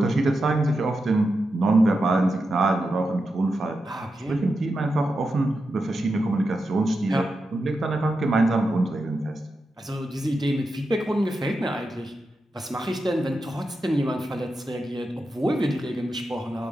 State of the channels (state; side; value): normal; both; correlation 0.88